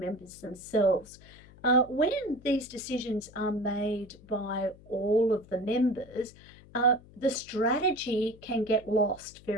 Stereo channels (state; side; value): noise; left; hum, 22 dB below the sound